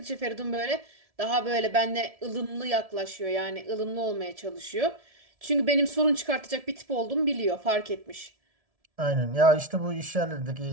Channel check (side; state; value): left; late; 1.7 ms